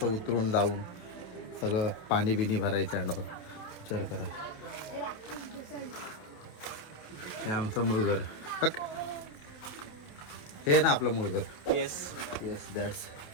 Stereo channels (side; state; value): right; late; 28 ms